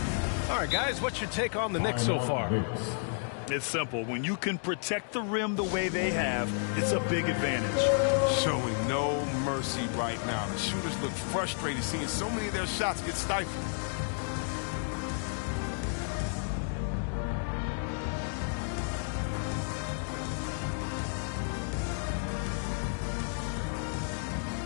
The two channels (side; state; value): right; silent; 57 dB below the other